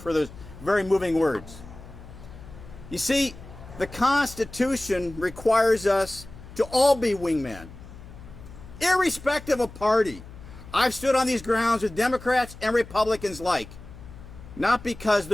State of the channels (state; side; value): noise; left; hum, 17 dB below the sound